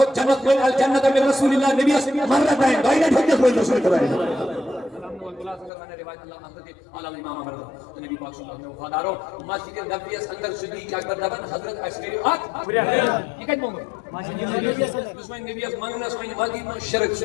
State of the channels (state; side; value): drops out; right; at 5.7 s